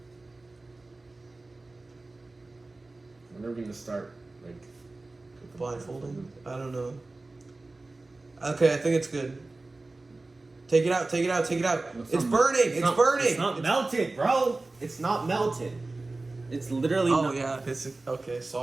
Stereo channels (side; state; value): left; quieter; 3.2 dB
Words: When are we gonna start? Like Blindfolding? I don't know. Okay, I think it's good. Take it out, take it out, take it out. It's burning! It's burning! It's not melted, bro! It's not melted. It's literally Oh, not. yeah. It's okay,